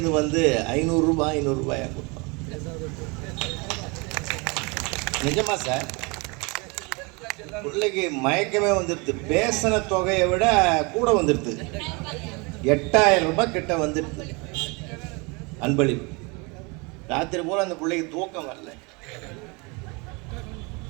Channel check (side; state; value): left; quieter; 28.9 dB